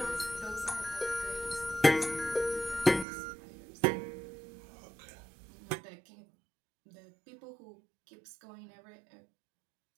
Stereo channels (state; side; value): drops out; left; at 3.1 s